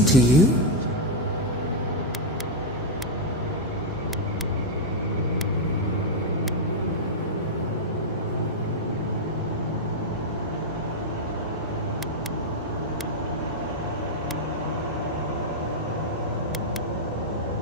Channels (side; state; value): both; normal; correlation -0.01